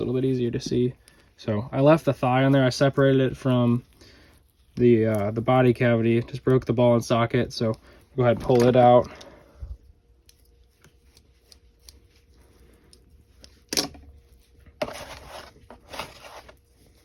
little bit easier to see. So I left the thigh on there. I separated it from the body cavity. Just broke the ball and socket. So go ahead and pull it out.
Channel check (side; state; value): both; identical; correlation 1.00